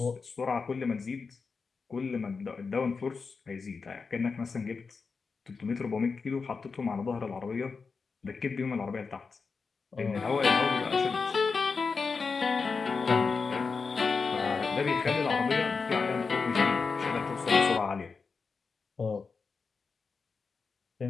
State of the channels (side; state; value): right; quieter; 4.9 dB